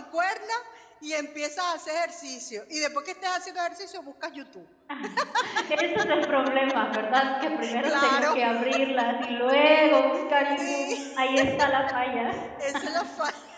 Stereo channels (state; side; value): identical; both; correlation 1.00